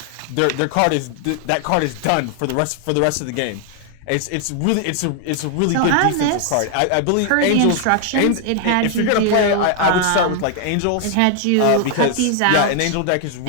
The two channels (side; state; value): both; different; correlation 0.00